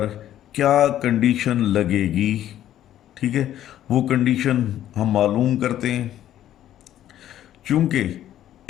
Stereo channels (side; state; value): right; quieter; 12.0 dB